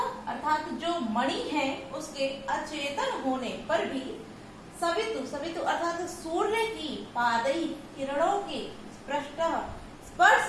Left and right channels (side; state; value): both; identical; correlation 1.00